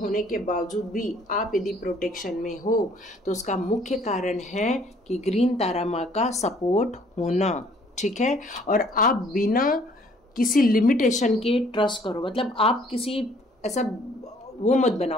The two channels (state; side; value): normal; both; correlation 0.60